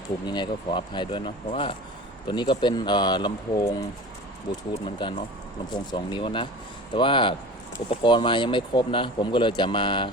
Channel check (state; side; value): normal; both; correlation 0.37